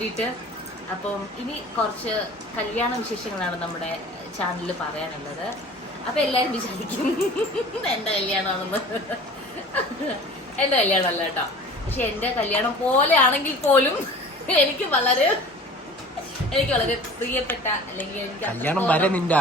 അപ്പം ഇനി കുറച്ച് കല്യാണ വിശേഷങ്ങളാണ് നമ്മുടെ ചാനലിൽ പറയാനുള്ളത്. അപ്പം എല്ലാവരും വിചാരിക്കും എൻ്റെ കല്യാണമാണെന്ന്. എൻ്റെ കല്യാണമല്ല കേട്ടോ. പക്ഷെ എൻ്റെ കല്യാണം പോലെ ആണെങ്കിൽ പോലും എനിക്ക് വളരെ പ്രിയപ്പെട്ട, അല്ലെങ്കിൽ എനിക്ക് കല്യാണം വരെ നിന്റെ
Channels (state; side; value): normal; both; correlation 0.43